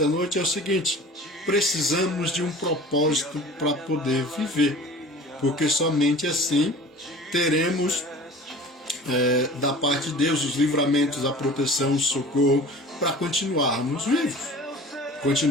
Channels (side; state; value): both; normal; correlation 0.42